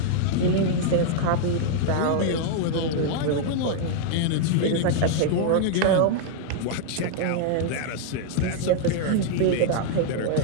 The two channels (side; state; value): both; different; correlation -0.01